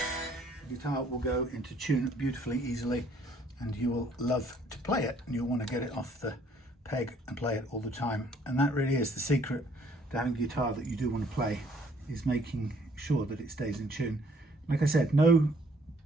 the guitar will go into tune beautifully, easily, and you will love to play it, and you'll want to get it off the peg and play it all the time. And that really is the secret to having a guitar that you do want to play, is making sure that it stays in tune. Like I said, no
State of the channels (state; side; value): normal; both; correlation 0.62